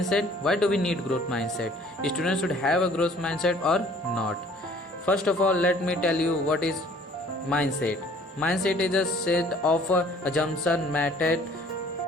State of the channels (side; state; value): both; normal; correlation 0.55